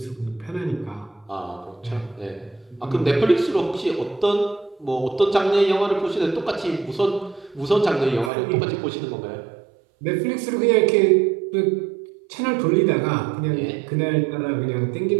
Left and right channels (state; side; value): drops out; left; at 8.3 s